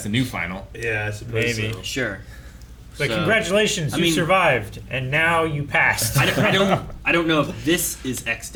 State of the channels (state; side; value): identical; both; correlation 1.00